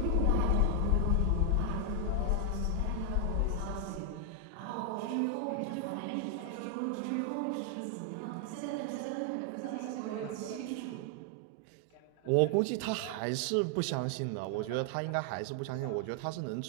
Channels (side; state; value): both; different; correlation 0.00